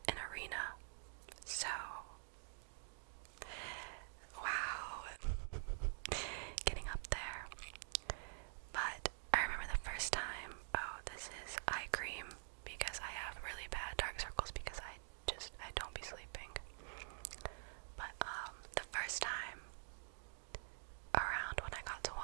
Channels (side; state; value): left; silent; digital silence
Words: an arena. So, wow, getting up there. But I remember the first time, oh, this is eye cream, because I have really bad dark circles because I don't be sleeping. But the first time around when I got to